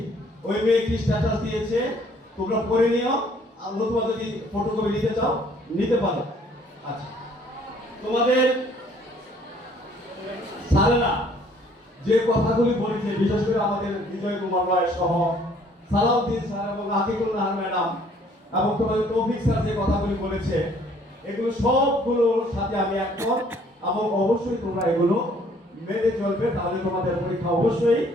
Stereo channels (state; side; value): normal; both; correlation 0.60